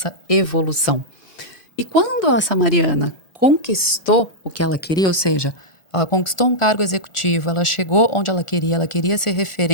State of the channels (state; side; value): late; right; 1.4 ms